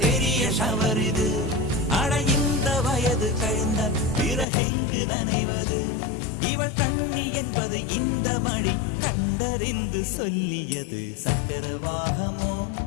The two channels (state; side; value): drops out; right; at 4.5 s